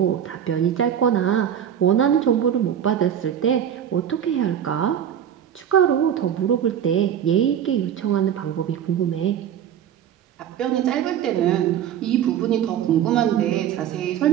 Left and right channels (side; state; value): left; quieter; 9.5 dB